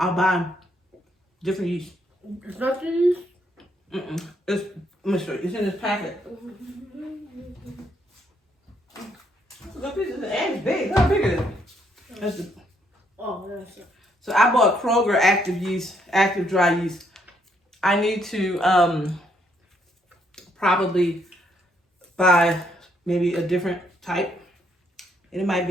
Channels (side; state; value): both; normal; correlation 0.72